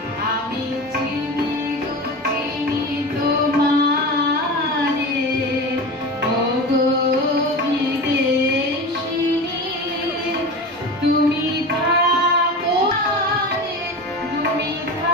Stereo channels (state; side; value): normal; both; correlation 0.29